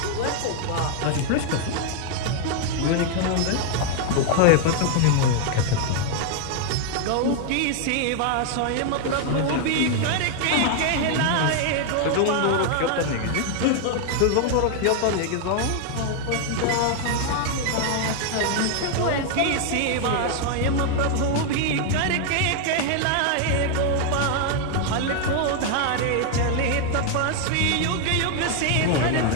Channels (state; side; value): different; both; correlation 0.00